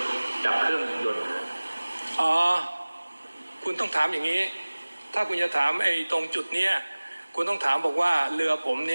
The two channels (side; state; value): both; inverted; correlation -1.00